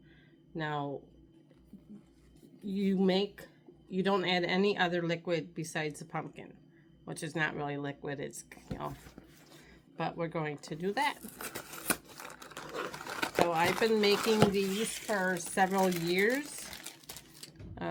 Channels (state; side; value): identical; both; correlation 1.00